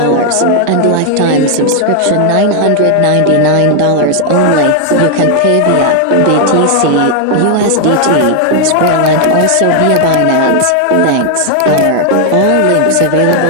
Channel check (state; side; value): different; both; correlation 0.00